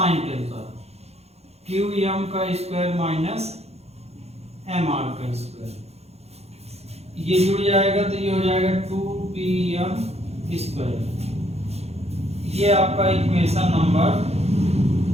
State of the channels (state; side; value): late; left; 0.30 ms